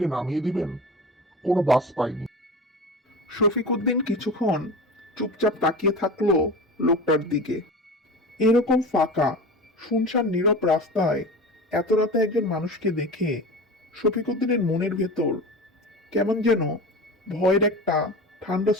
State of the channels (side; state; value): both; normal; correlation 0.31